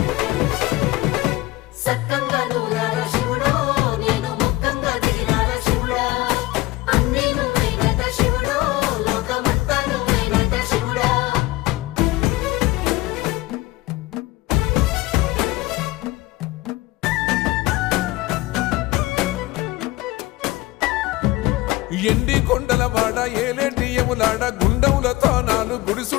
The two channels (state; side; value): quieter; right; 19.4 dB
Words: సక్కంగా నూరార శివుడో నేను మొక్కంగా దిగిరార శివుడా అన్నీ నువ్వేనట శివుడో లోకమంతా నువ్వేనట శివుడా ఎండి కొండల వాడ ఏలేటి యములాడ గుండములతో నాలు గుడి